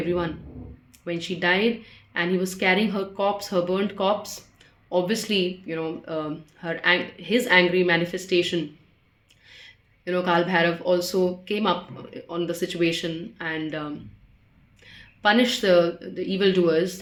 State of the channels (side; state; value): both; identical; correlation 1.00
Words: When she died and he was carrying her corpse, her burnt corpse, obviously, his angry manifestation, Kal Bhairav also came up on the situation and punished the evildoers,